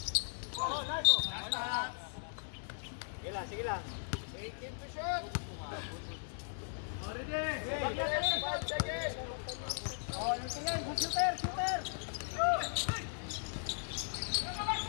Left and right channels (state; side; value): silent; right; digital silence